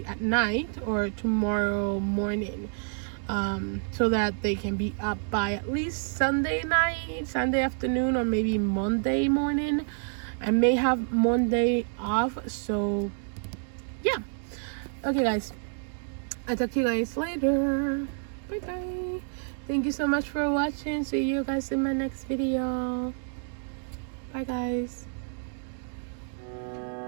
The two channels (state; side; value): silent; left; 59 dB below the other